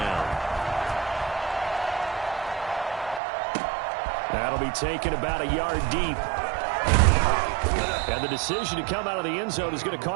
That'll be taken about a yard deep. And the decision to come out of the end zone is going to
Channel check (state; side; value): drops out; left; at 3.2 s